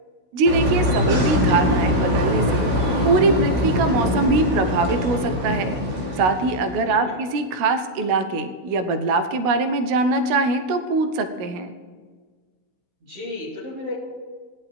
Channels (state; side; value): late; left; 16 ms